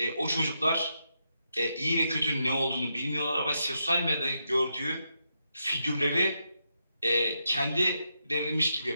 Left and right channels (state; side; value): inverted; both; correlation -0.83